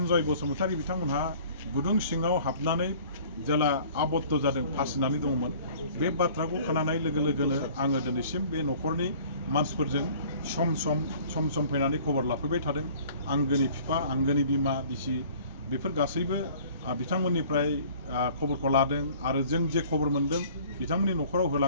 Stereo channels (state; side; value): inverted; both; correlation -0.51